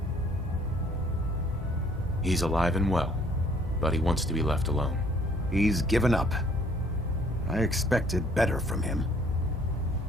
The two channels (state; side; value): normal; both; correlation 0.60